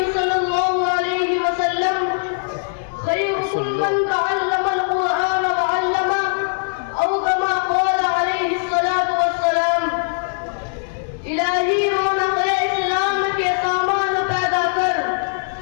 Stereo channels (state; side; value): silent; right; digital silence